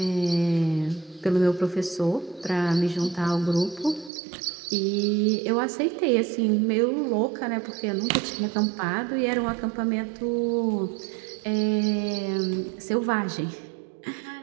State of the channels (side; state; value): left; drops out; at 4.1 s